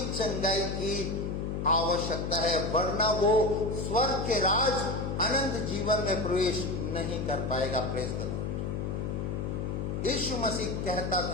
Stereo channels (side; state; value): left; noise; hum, 2 dB below the sound